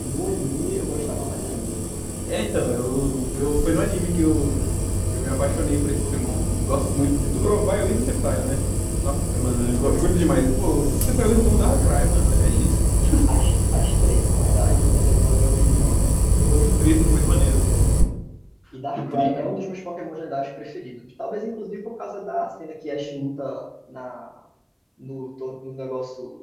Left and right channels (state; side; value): identical; both; correlation 1.00